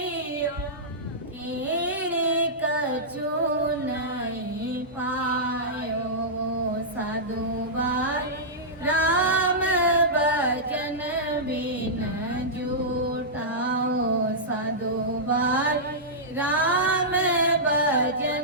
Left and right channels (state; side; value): normal; both; correlation -0.13